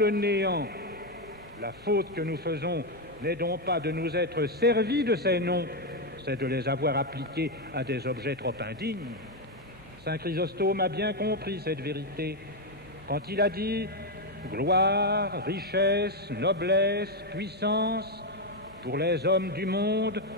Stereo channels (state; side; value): normal; both; correlation 0.05